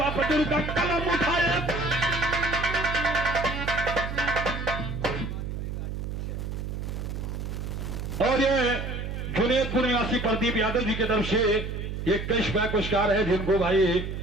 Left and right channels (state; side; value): noise; right; hum, 5 dB below the sound